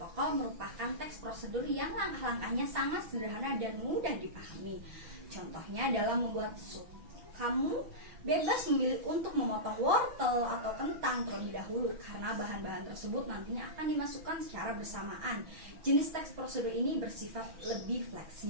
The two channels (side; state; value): left; late; 6.0 ms